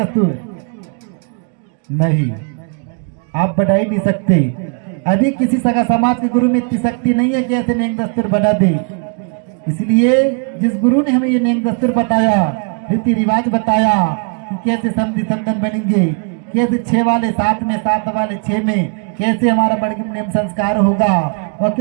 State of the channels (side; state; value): left; quieter; 39.9 dB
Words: नहीं, आप बढ़ा ही नहीं सकते। अभी किसी सगा समाज के गुरु में इतनी शक्ति नहीं है कि ऐसे नेम दस्तूर बना दे। इसलिए जिस गुरु ने हमें ये नेम दस्तूर बताया, रीति रिवाज बताया कि कैसे समझी संतन बनेंगे, कैसे 6 वाले 7 में, 7 वाले 6 में, कैसे हमारा बड़गिम नेम संस्कार होगा और